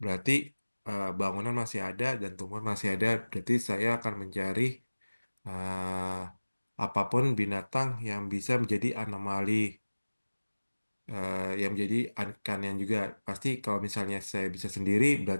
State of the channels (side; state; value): both; inverted; correlation -1.00